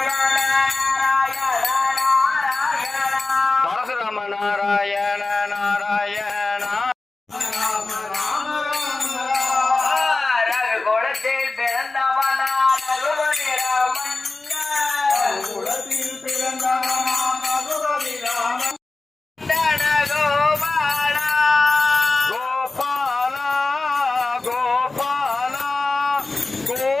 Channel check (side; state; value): right; quieter; 3.4 dB